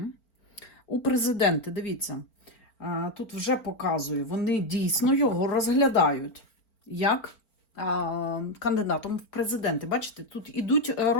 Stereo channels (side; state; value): right; late; 4.4 ms